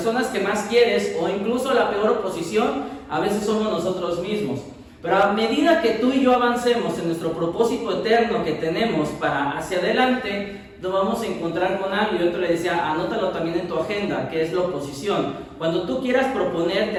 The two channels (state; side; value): identical; both; correlation 1.00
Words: que más quieres, o incluso la peor oposición a veces somos nosotros mismos. Pero a medida que tú y yo avancemos en nuestro propósito eterno que tenemos para hacia adelante, nos vamos a encontrar con algo. Yo te le decía, anótalo también en tu agenda, que es la oposición. Cuando tú quieras